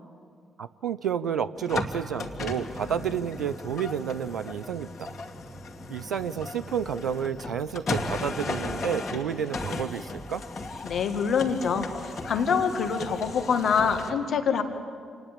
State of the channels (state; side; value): normal; both; correlation 0.56